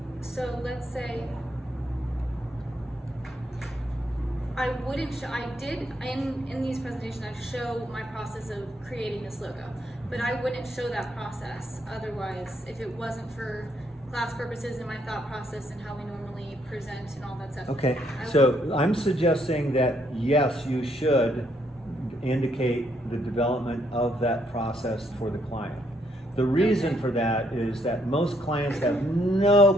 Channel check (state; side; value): normal; both; correlation 0.72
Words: let's say I wouldn't show, I did, in these presentations, I show my process of creating this logo, but I wouldn't show that process otherwise if it wasn't for class purposes and my thought process and how we normally present and all that stuff. Okay, so I'm suggesting that yes, you should indicate the development of that process for the client. The reason for that is that most clients have no